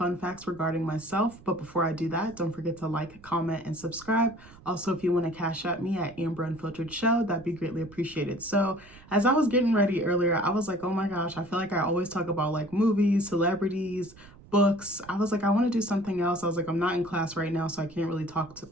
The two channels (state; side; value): noise; right; rumble, 22 dB below the sound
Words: facts regarding myself, but before I do that, don't forget to like, comment, and subscribe. Also, if you want to cash at me at AmberUnfilteredShow, that'd be greatly appreciated. So, as I was getting ready earlier, I was like, oh my gosh, I feel like I always talk about like movies, celebrities, books. I was like, I want to do something else. I was like, I'm not in class right now, so I can't really talk